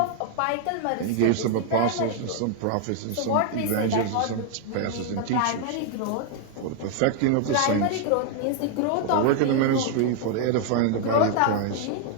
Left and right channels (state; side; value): different; both; correlation 0.00